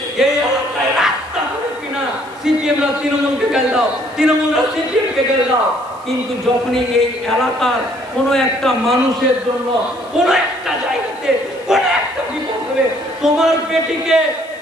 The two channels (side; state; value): left; noise; hiss, 28 dB below the sound